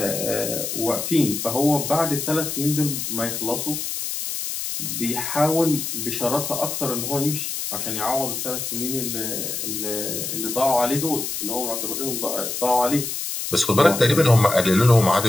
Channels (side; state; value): left; noise; hiss, 4 dB below the sound